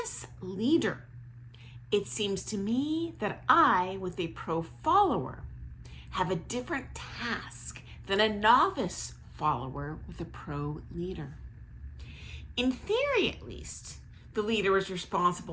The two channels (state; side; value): identical; both; correlation 1.00